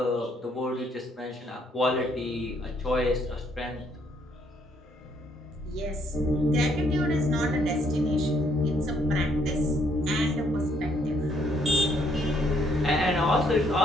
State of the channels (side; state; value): both; normal; correlation 0.69